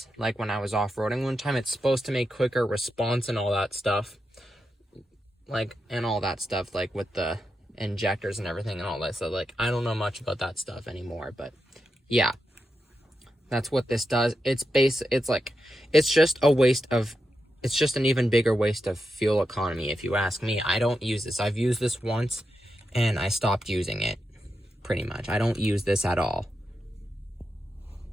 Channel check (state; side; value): normal; both; correlation 0.87